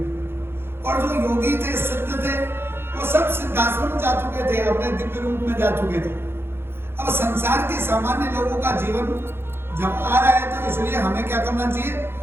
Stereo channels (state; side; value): late; left; 0.11 ms